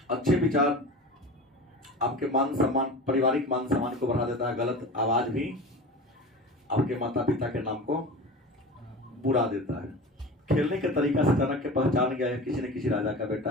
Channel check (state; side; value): normal; both; correlation 0.33